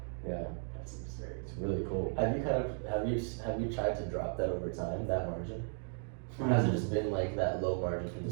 Yeah. That's absurd. It's really cool. Have you tried to drop that over time, that margin? Or has it just been like that low margin from the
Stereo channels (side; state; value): left; silent; 54 dB below the other